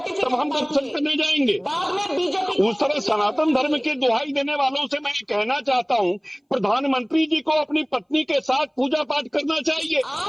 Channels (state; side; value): identical; both; correlation 1.00